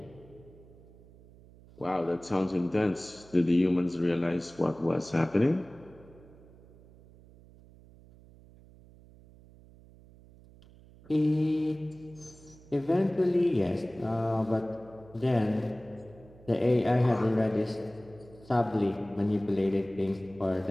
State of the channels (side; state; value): right; noise; hum, 23 dB below the sound